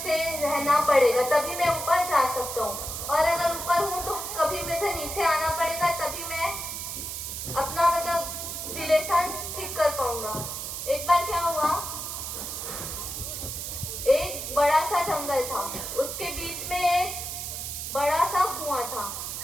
रहना पड़ेगा, तभी मैं ऊपर जा सकता हूँ। और अगर ऊपर हूँ तो कभी मुझे नीचे आना पड़ेगा, तभी मैं अपना मतलब रिलेशन ठीक कर पाऊंगा। एक बार क्या हुआ, एक बड़ा सा जंगल था, उसके बीच में एक बड़ा सा कुआं था।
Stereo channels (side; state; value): right; noise; hiss, 6 dB below the sound